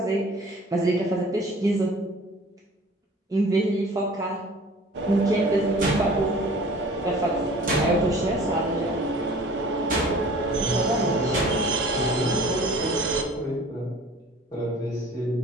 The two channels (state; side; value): normal; both; correlation 0.47